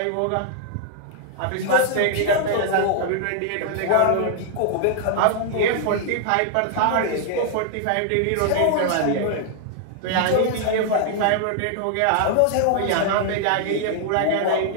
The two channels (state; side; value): different; both; correlation 0.00